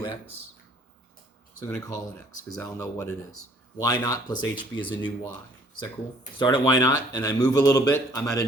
x? So I'm going to call it x because I'll know what it is. Y naught plus hb is a new y. Is that cool? Start at y naught and I move a little bit, I'm at a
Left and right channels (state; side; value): normal; both; correlation 0.59